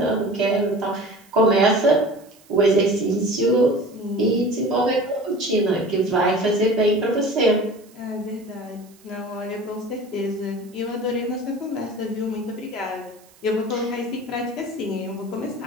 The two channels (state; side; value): noise; right; hiss, 28 dB below the sound